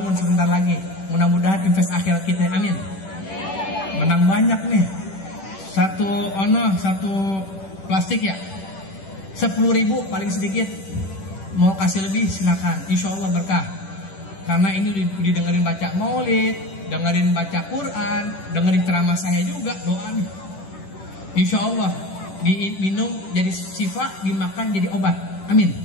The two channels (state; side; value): late; right; 10 ms